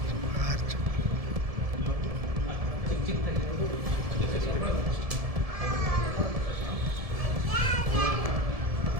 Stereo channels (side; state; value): left; late; 1.7 ms